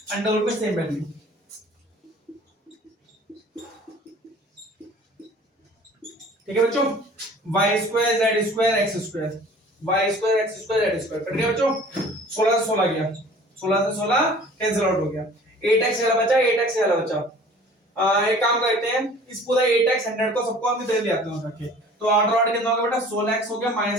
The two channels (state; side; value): normal; both; correlation 0.48